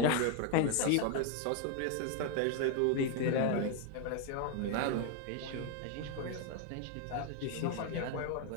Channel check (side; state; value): both; different; correlation 0.01